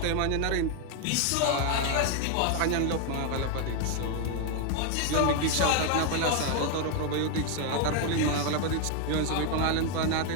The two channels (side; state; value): both; different; correlation 0.00